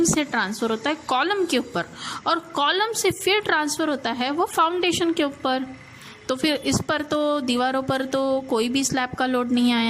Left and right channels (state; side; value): identical; both; correlation 1.00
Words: से ट्रांसफ़र होता है कॉलम के ऊपर, और कॉलम से फिर ट्रांसफ़र होता है वो फाउंडेशन के ऊपर। तो फिर इस पर तो दीवारों पर तो कोई भी स्लैब का लोड नहीं